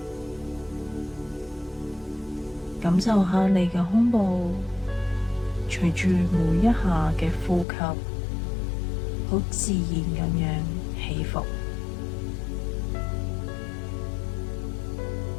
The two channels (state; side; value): drops out; right; at 7.7 s